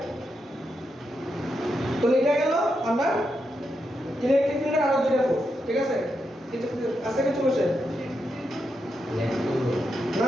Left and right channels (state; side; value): normal; both; correlation 0.84